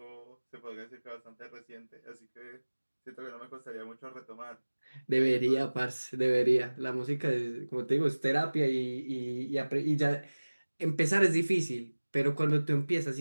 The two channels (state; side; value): inverted; both; correlation -1.00